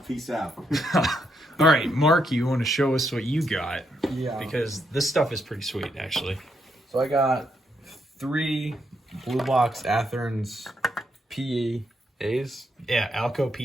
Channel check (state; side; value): normal; both; correlation 0.78